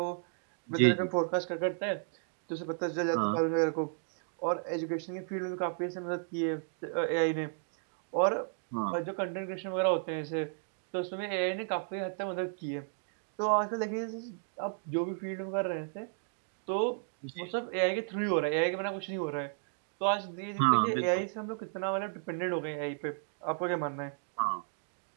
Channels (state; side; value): silent; left; digital silence